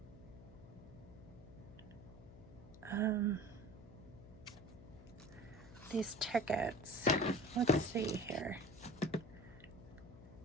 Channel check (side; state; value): left; noise; hum, 17 dB below the sound